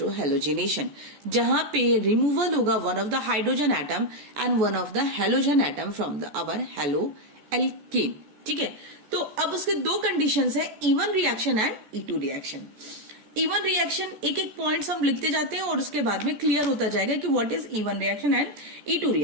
जहां पे removal होगा one of the hydrogen atom and one of the halogen atom from the our haloalkane। ठीक है, तो अब उसके दो conditions है, E1 reaction and E2 reaction। E1 reaction एक एक पॉइंट्स हम लिखते जाते हैं और उसके बाद में क्लियर होता जाएगा कि what is E1 reaction and E2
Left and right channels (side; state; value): left; late; 14 ms